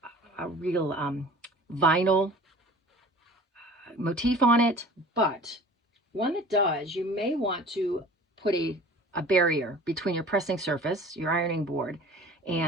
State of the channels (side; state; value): both; normal; correlation 0.44